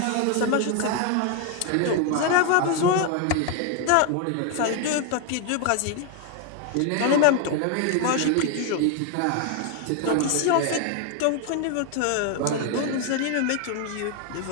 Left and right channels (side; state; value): both; different; correlation 0.01